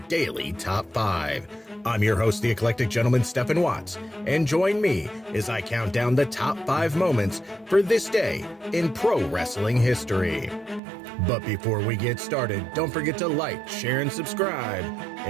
Daily Top 5. I'm your host, the eclectic gentleman, Stephen Watts, and join me as I count down the top 5 moments for this day in pro wrestling history. But before we get started, don't forget to like, share, and subscribe.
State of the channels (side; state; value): left; drops out; at 10.8 s